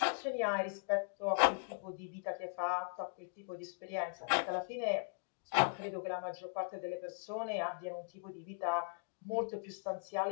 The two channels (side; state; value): right; silent; digital silence